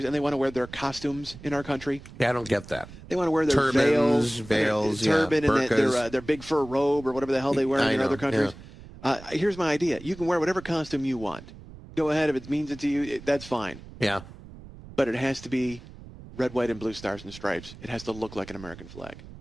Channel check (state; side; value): noise; right; rumble, 17 dB below the sound